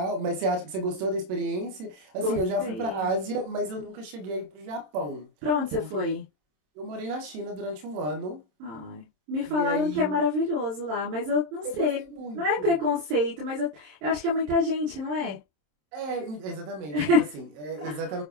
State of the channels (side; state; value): left; late; 27 ms